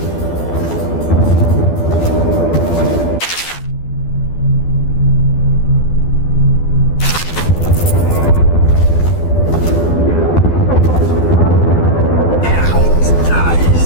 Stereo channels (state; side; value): late; right; 12 ms